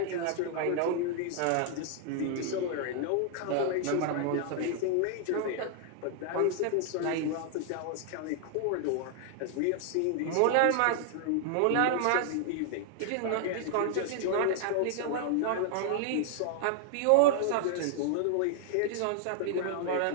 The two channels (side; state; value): both; different; correlation -0.01